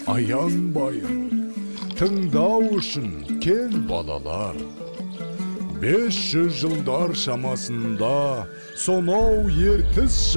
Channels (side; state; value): both; inverted; correlation -1.00